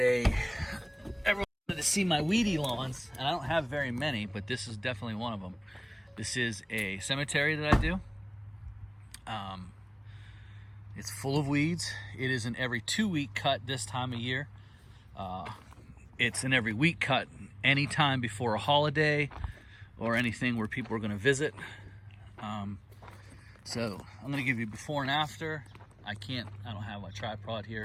wanted to see my weedy lawns, and I don't have very many, but this is definitely one of them. This is a cemetery that I do. It's full of weeds. It is an every 2-week cut this time of year. It's an every week cut anytime before a holiday or anything where people are going to visit. So I'm going to give you before and after. I don't have my tripod here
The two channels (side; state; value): both; identical; correlation 1.00